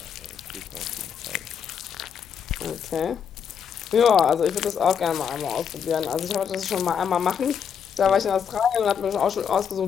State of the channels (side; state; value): right; quieter; 7.6 dB